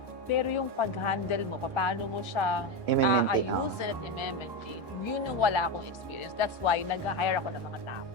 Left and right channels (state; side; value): late; left; 1.1 ms